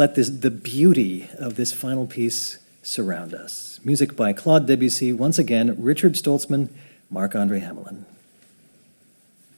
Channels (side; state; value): both; inverted; correlation -1.00